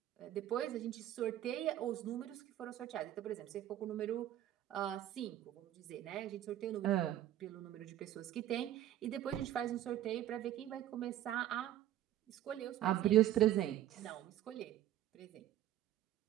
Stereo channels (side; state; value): left; quieter; 12.6 dB